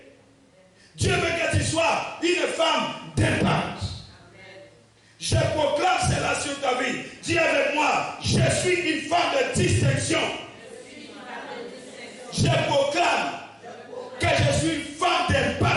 Dieu veut que tu sois une femme d'impact. Je proclame cela sur ta vie. Dis avec moi, je suis une femme de distinction. Je proclame que je suis une femme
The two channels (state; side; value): identical; both; correlation 1.00